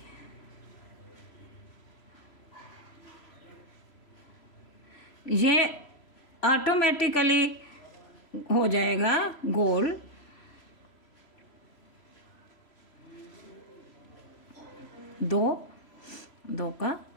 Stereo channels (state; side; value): late; right; 3.0 ms